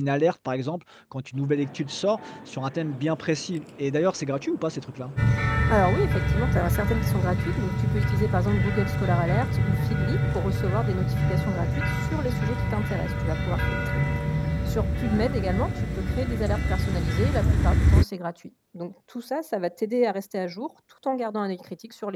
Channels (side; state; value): both; identical; correlation 1.00